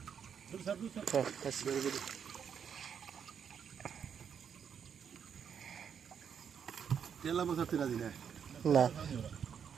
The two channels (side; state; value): left; quieter; 7.6 dB